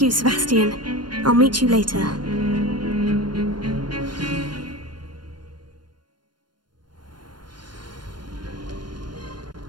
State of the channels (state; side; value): late; left; 0.71 ms